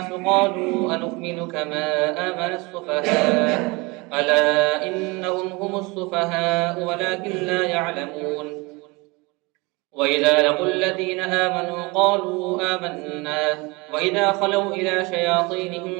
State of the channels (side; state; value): left; quieter; 25.7 dB